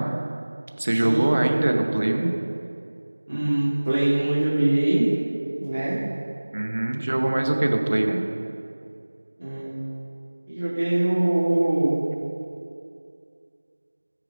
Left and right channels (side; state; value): both; inverted; correlation -1.00